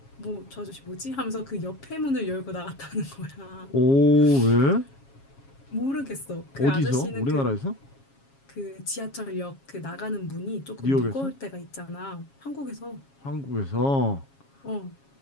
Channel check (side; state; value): right; late; 7.3 ms